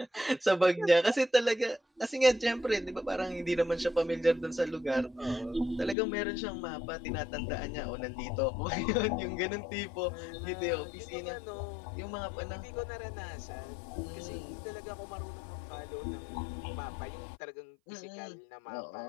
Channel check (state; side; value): drops out; right; at 6.0 s